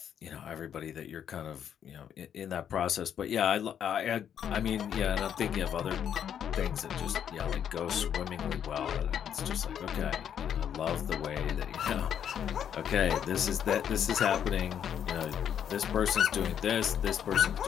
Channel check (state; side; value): quieter; right; 9.0 dB